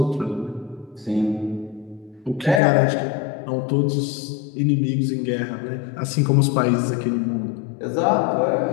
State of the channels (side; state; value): right; drops out; at 2.6 s